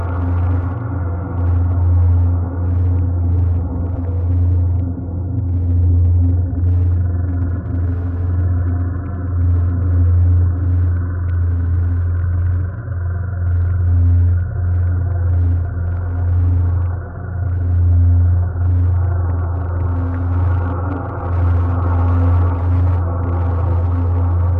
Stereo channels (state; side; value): identical; both; correlation 1.00